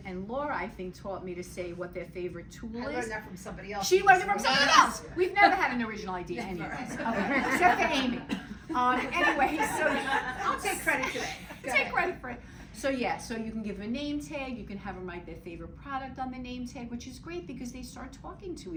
And Laura, I think, taught me to say what their favorite tool is. I learned that from somebody else. She learned it from somebody else. We've never had an original idea anyway. Except for Amy. Anyway, so I'll take credit today. Take credit for it. So yeah, so you can give them a name tag, you can have them write their favorite product on the name tag, which is great because they start talking to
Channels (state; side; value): identical; both; correlation 1.00